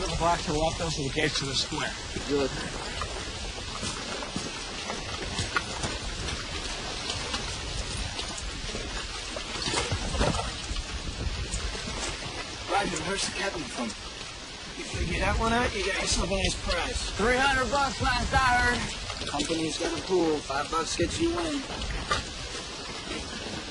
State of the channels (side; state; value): both; identical; correlation 1.00